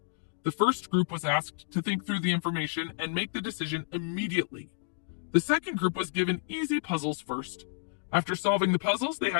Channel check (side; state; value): right; silent; digital silence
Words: The first group was asked to think through the information and make the decision immediately. The second group was given easy puzzles first. After solving the puzzles, they